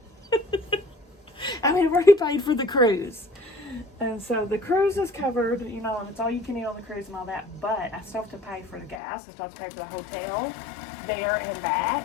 I mean, I've already paid for the cruise, and so the cruise is covered, you know, and it's all you can eat on the cruise and all that, but I still have to pay for the gas. I still have to pay for the hotel there and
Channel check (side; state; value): right; drops out; at 9.0 s